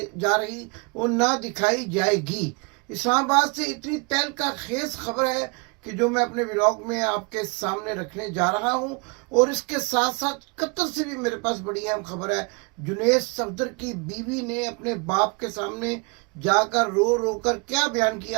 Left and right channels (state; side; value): quieter; left; 31.4 dB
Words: जा रही और ना दिखाई जाएगी। इस्लामाबाद से इतनी तहलका खेज खबर है कि जो मैं अपने व्लॉग में आपके सामने रखने जा रहा हूं। और इसके साथ साथ कतर से भी मेरे पास बड़ी अहम खबर है। जुनैद सफदर की बीवी ने अपने बाप के सामने जाकर रो रो कर क्या बयान